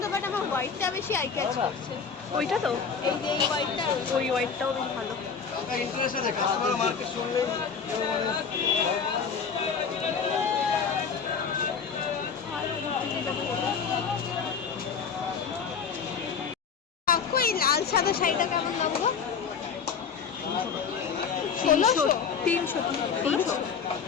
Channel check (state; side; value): quieter; right; 6.2 dB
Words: বাট আমার হোয়াইটটা বেশি আই ক্যাচ করছে। ওইটা তো এই যে এই হোয়াইটটা, ওই হোয়াইটটাও বেশ ভালো। ইন্টারেস্ট আছে কাস্টমার মার্কেট শুনলেই কেউ মানে কাকু এই লাল সাদা শাড়িটা কেমন লাগলো? 300 300